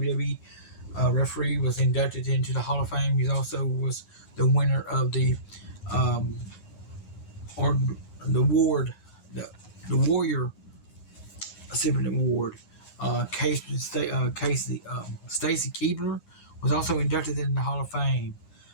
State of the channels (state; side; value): late; right; 9.7 ms